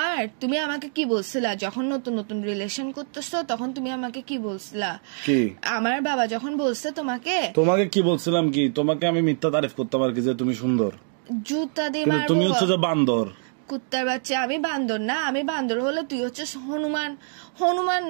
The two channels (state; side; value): silent; left; 62 dB below the other